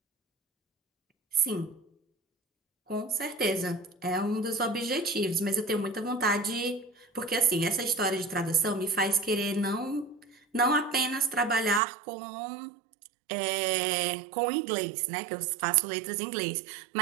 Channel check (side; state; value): left; drops out; at 11.8 s